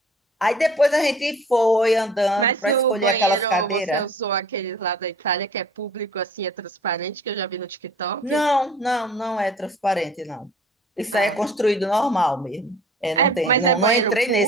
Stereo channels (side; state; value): both; normal; correlation 0.49